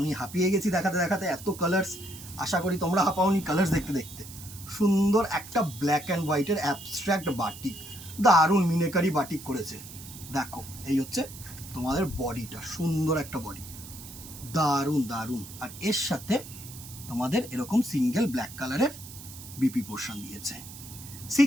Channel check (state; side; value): noise; right; hiss, 15 dB below the sound